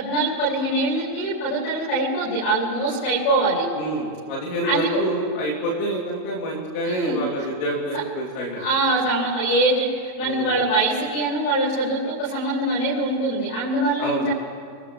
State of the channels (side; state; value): right; late; 38 ms